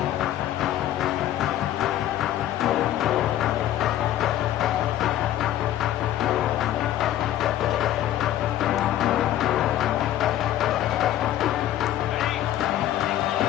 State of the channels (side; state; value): right; quieter; 12.6 dB